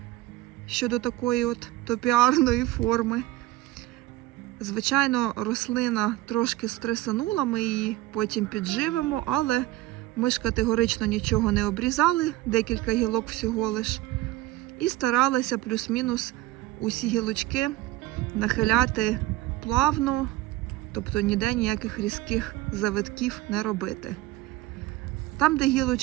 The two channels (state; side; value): quieter; left; 17.0 dB